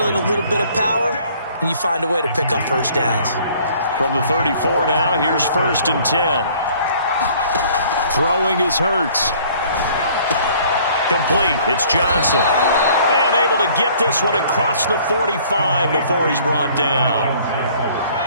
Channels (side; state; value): both; inverted; correlation -0.56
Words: a little bit of power, and you find a way to pick up first downs. From the 34 now, here's 1st and 10. Throwing is Hurts. Complete. It's Johnson. And able to get this one across the 45 before he's brought down.